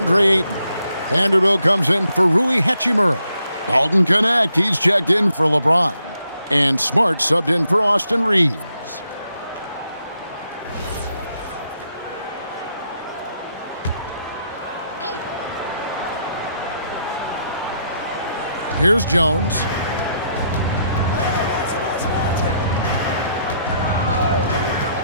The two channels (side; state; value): both; inverted; correlation -0.76